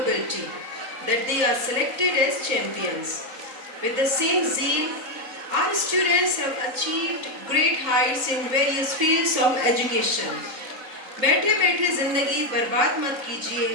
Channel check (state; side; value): late; left; 3.8 ms